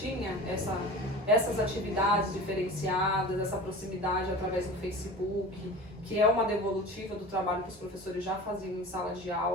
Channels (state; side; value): normal; both; correlation 0.35